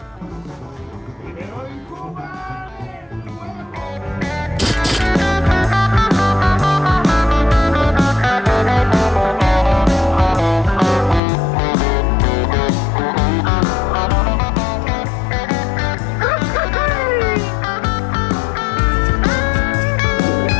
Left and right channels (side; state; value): right; drops out; at 11.2 s